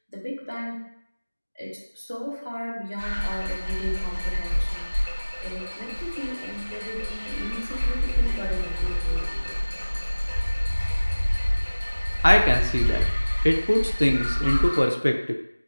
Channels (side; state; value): both; inverted; correlation -1.00